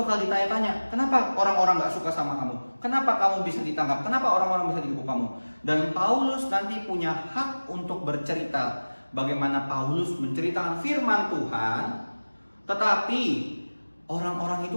ditanya-tanya, kenapa orang-orang gak suka sama kamu? Kenapa kamu bisa ditangkap? Kenapa orang-orang bisa dihukum kamu? Dan Paulus nanti punya hak untuk bercerita bagaimana Paulus menceritakan firman Tuhan. Tetapi orang-orang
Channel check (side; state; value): both; inverted; correlation -1.00